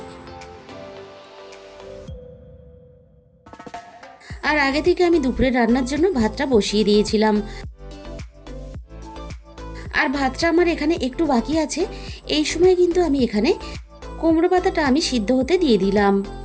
আর আগে থেকে আমি দুপুরে রান্নার জন্য ভাতটা বসিয়ে দিয়েছিলাম। আর ভাতটা আমার এখানে একটু বাকি আছে। এই সময় কিন্তু আমি এখানে কুমড়ো পাতাটা আমি সিদ্ধ হতে দিয়ে দিলাম।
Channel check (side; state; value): both; identical; correlation 1.00